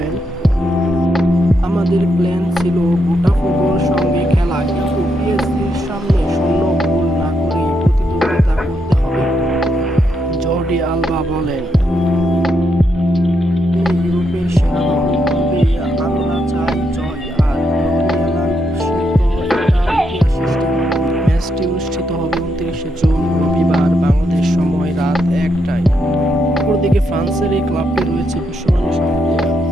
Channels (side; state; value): both; normal; correlation 0.80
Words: আমাদের প্ল্যান ছিল বোটাফোগোর সঙ্গে খেলা, কিন্তু পিএসজির সামনে শূন্য গোল না করেই প্রতিদ্বন্দ্বিতা করতে হবে। জর্ডি আলবা বলেন, ইউরোপের সেরা দল, তবে আমরা চাই জয় আর লরিয়ানা নিশ্চিত এটা ইতিহাস সৃষ্টি করবে। ম্যাচটি অনুষ্ঠিত হবে ২৯শে জুন রবিবার বাংলাদেশ সময় রাত ১টায়। অপরদিকে ফ্রান্সের এই ক্লাবটি রয়েছে বিশ্বমানের সব প্লেয়ার,